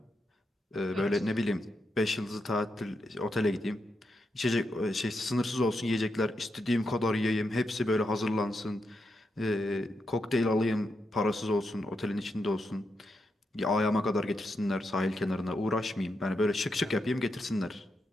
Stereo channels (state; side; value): normal; both; correlation 0.84